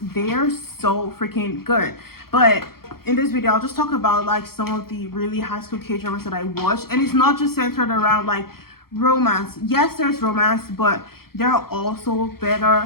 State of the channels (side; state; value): right; late; 0.94 ms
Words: they're so freaking good. But in this video, I'll just talk about like some of the really high school K-dramas that I watched, and it's not just centered around like romance. Yes, there's romance, but there are also